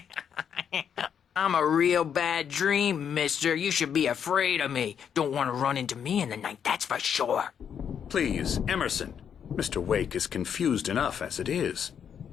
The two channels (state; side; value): quieter; right; 8.0 dB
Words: I'm a real bad dream, mister. You should be afraid of me. Don't want to run into me in the night, that's for sure. Please, Emerson. Mr. Wake is confused enough as it is.